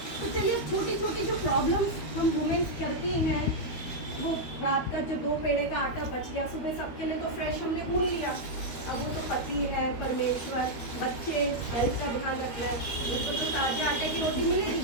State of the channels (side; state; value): right; late; 12 ms